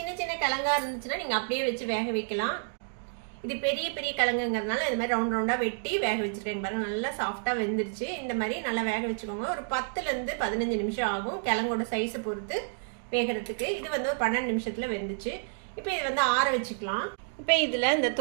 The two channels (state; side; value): silent; left; digital silence